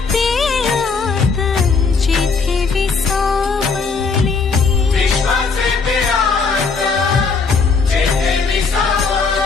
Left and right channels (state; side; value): quieter; right; 4.8 dB